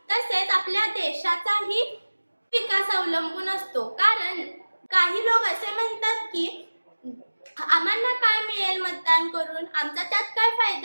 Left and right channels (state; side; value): inverted; both; correlation -1.00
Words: तसेच आपल्या देशाचाही विकास अवलंबून असतो। कारण काही लोक असे म्हणतात की आम्हाला काय मिळेल मतदान करून, आमचा त्यात काय